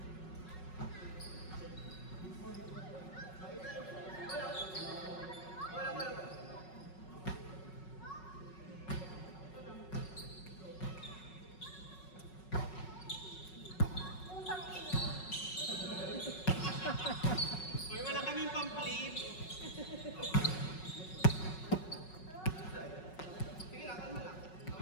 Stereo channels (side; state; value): right; late; 5.4 ms